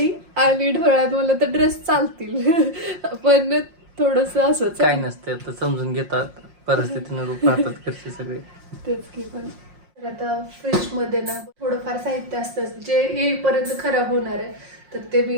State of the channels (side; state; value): left; late; 5.6 ms